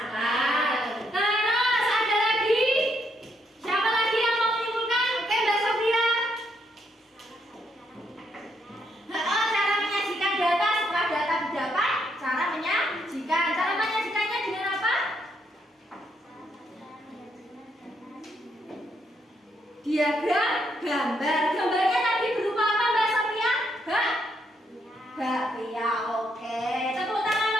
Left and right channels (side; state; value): both; normal; correlation 0.76